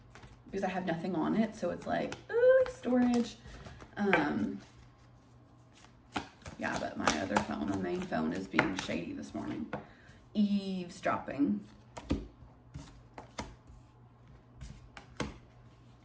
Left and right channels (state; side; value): identical; both; correlation 1.00